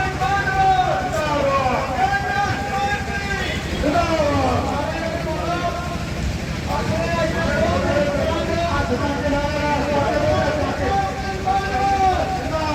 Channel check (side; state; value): both; identical; correlation 1.00